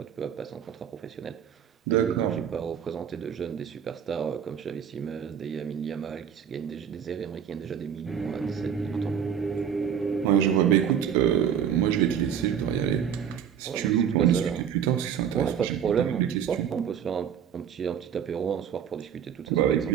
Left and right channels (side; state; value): left; quieter; 8.4 dB